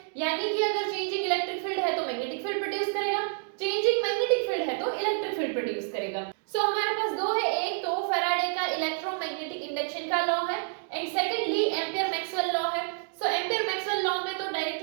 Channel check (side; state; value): left; silent; 59 dB below the other